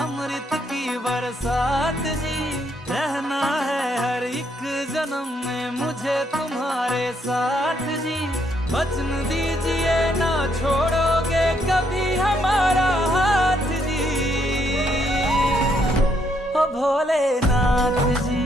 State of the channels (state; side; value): normal; both; correlation 0.73